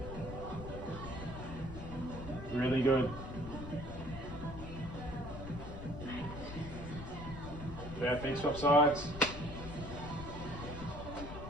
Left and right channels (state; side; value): noise; left; rumble, 9 dB below the sound